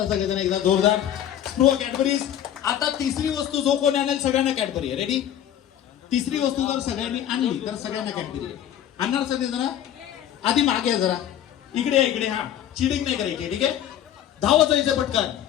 सगळेजण एकदा जोरदार. स्पृहा कॅडबरीज. आता तिसरी वस्तू जो कोणी आणेल सगळ्यांना कॅडबरी आहे. रेडी? तिसरी वस्तू जर सगळ्यांनी आणली तर सगळ्यांना कॅडबरी आहे. आणणार सगळे जरा? आधी मागे जरा इकडे इकडे. हा चिडिंग नाही करायची. ठीक आहे. धावत जायचं पटकन.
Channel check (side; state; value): right; quieter; 10.8 dB